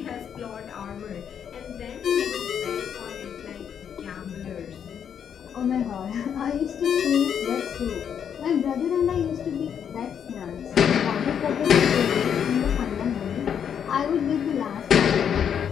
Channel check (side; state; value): right; quieter; 8.2 dB